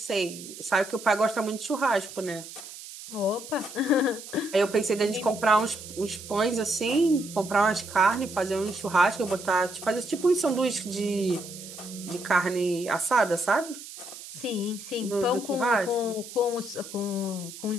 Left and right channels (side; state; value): right; noise; hiss, 14 dB below the sound